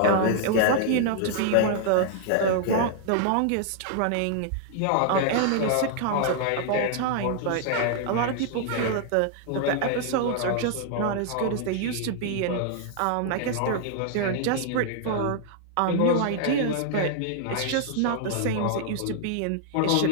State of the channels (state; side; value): different; both; correlation -0.01